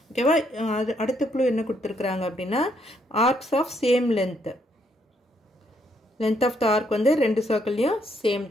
ஓகேவா? அடுத்த க்ளூ என்ன கொடுத்திருக்காங்க அப்படினா arcs of same length. Length of the arc வந்து ரெண்டு சர்க்கிள்லயும் சேம்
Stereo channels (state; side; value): normal; both; correlation 0.73